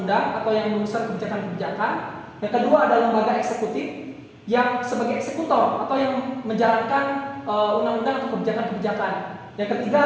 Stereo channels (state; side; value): identical; both; correlation 1.00